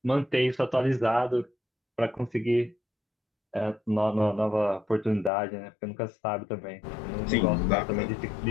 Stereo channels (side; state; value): right; drops out; at 5.3 s